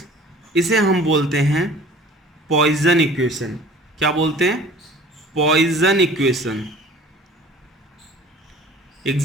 इसे हम बोलते हैं पॉइजन इक्वेशन। क्या बोलते हैं? Poison equation.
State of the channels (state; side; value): normal; both; correlation 0.46